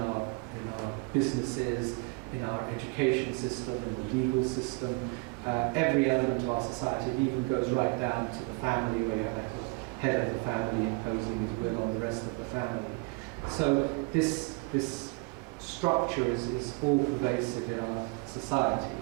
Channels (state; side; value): quieter; left; 30.2 dB